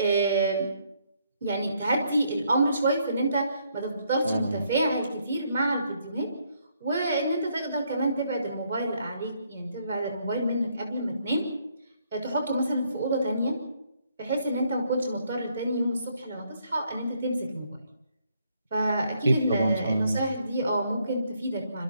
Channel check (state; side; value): inverted; both; correlation -0.71